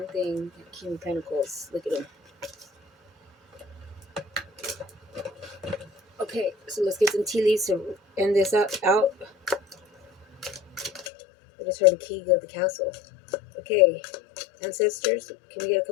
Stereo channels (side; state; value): right; drops out; at 11.1 s